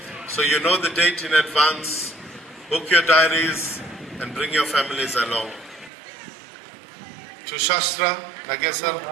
So you know the date in advance. Book your diaries and bring your families along. To Shastra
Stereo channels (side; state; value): left; drops out; at 5.9 s